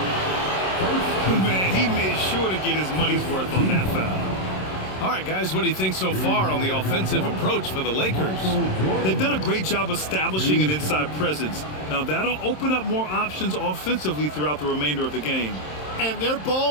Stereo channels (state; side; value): late; right; 27 ms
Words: Man, he made sure to get his money's worth on that foul. All right, guys, what do you think so far on the offensive approach for the Lakers? They've done a great job establishing an inside presence. Now, that'll open up more options offensively throughout the remainder of the game. And their